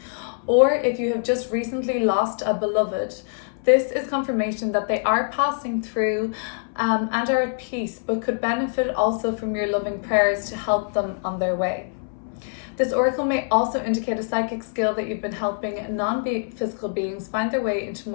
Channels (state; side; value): silent; right; 63 dB below the other